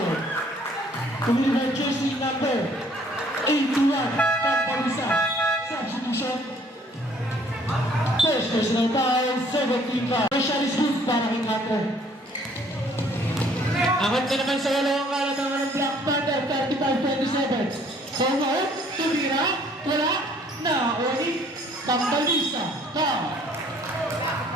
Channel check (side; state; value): both; normal; correlation 0.60